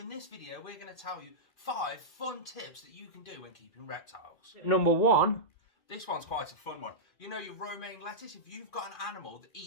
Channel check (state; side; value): late; right; 2.5 ms